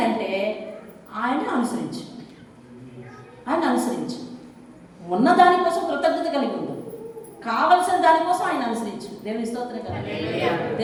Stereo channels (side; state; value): both; identical; correlation 1.00